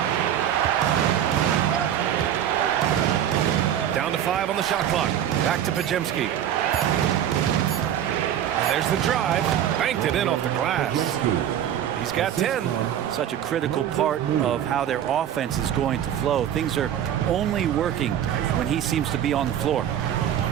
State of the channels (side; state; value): left; quieter; 10.3 dB